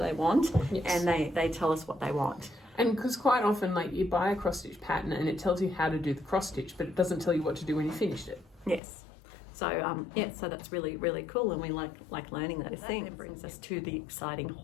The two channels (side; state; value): right; drops out; at 8.8 s